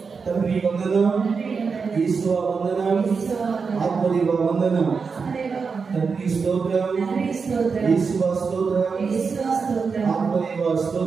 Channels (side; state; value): left; quieter; 5.2 dB